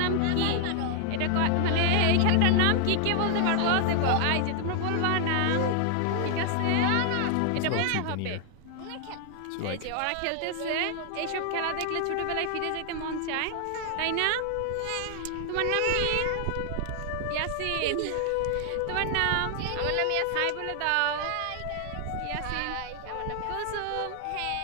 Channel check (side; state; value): both; different; correlation 0.00